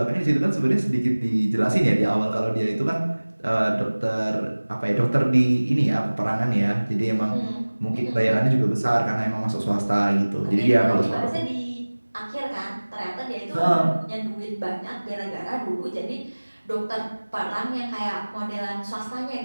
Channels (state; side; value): inverted; both; correlation -1.00